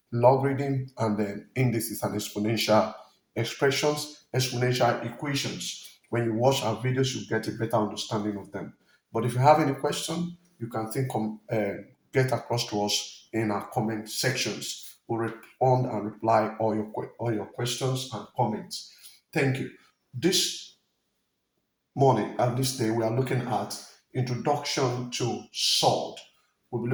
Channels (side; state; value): both; identical; correlation 1.00